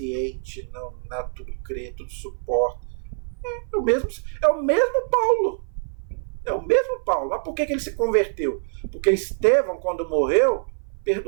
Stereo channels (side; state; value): left; silent; 57 dB below the other